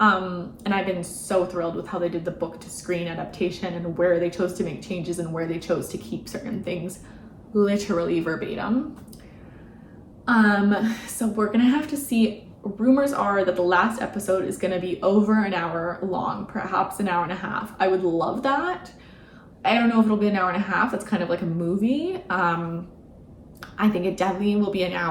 I've been so thrilled with how they did the book to screen adaptation and where they chose to make changes and where they chose to keep certain things literally verbatim. So we're gonna have to see. Rumors are that the last episode is gonna be over an hour long, perhaps an hour and a half. I would love that. I don't know if it'll be an hour and a half. That's kind of like a movie. I think it definitely will be an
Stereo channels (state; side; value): identical; both; correlation 1.00